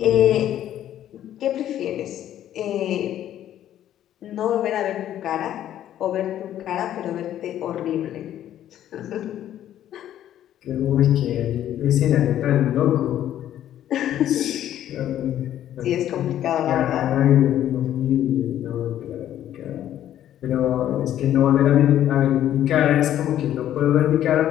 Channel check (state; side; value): quieter; right; 11.6 dB